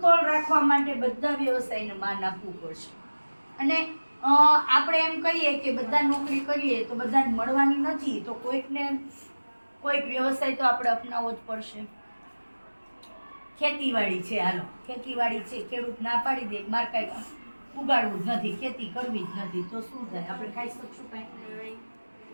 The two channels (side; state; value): both; inverted; correlation -1.00